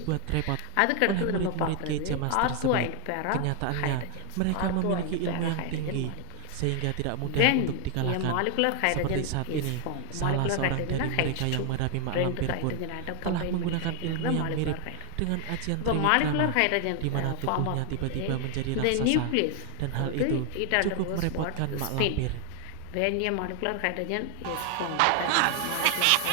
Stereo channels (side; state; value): both; different; correlation 0.00